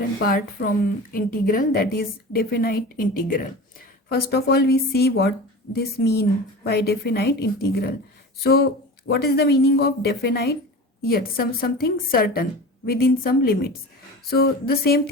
part from integral, that is definite integral. First of all, we see what this mean by definite integral. So, what is the meaning of definite? Yet something certain within some limits. So the same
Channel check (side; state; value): both; normal; correlation 0.33